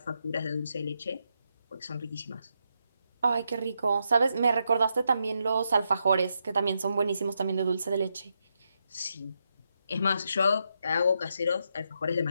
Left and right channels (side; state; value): both; inverted; correlation -0.82